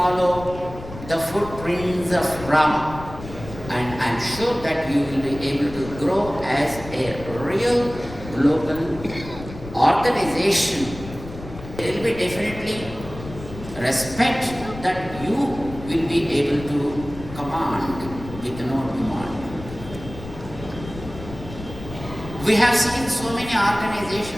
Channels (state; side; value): noise; left; rumble, 13 dB below the sound